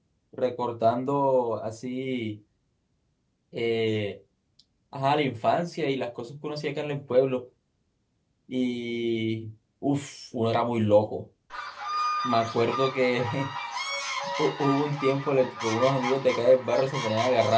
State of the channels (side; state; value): both; identical; correlation 1.00